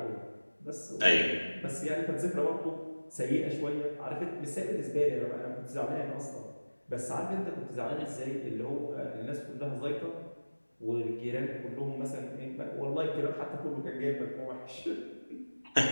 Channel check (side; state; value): both; inverted; correlation -1.00